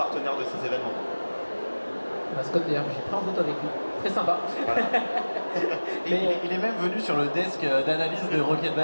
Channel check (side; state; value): both; inverted; correlation -1.00